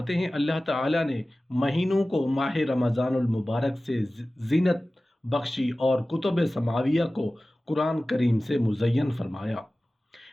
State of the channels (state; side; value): normal; both; correlation 0.96